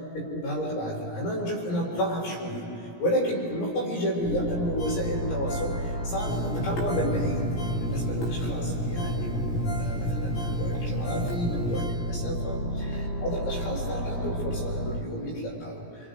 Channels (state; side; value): late; right; 17 ms